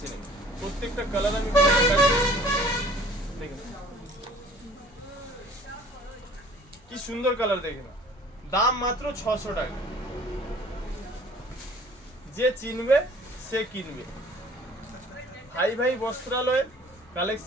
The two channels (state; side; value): normal; both; correlation 0.52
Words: নেবে। প্রত্যেকটা কালার আমি দেখেন কি সুন্দর কালার, দেখে না। দাম মাত্র 600 টাকা। যে চিনবে সে কিনবে। ভাই ভাই বস্ত্রালয়ের